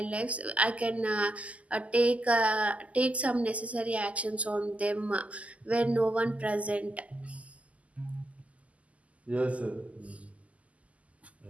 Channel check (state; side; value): late; left; 0.069 ms